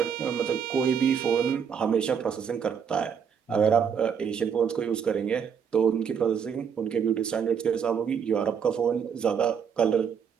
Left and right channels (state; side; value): quieter; left; 7.2 dB